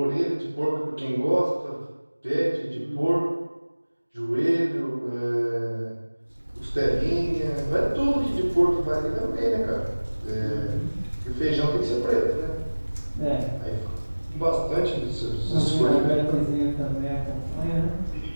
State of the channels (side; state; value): both; inverted; correlation -1.00